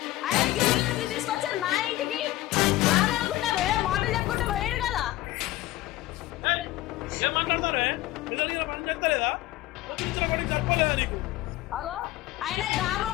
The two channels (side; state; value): right; quieter; 16.3 dB